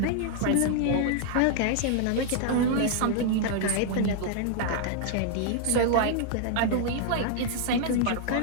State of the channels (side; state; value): both; different; correlation 0.00